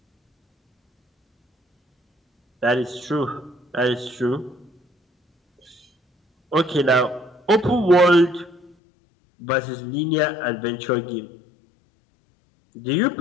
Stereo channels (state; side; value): drops out; right; at 8.8 s